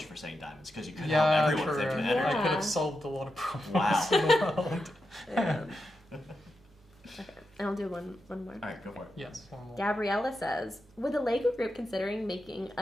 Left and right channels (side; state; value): both; normal; correlation 0.88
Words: for saying diamonds because you could yeah, help everyone true. with infinite Yeah. energy. I could have solved a lot of problems Wow. in the world. Yeah. Okay. And I'll do one more. All right, go for it. Yes, one more. Gabriella says, with the Lego group considering making